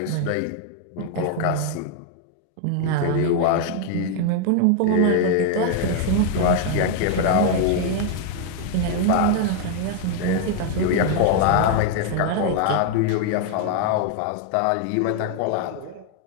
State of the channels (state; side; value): different; both; correlation 0.00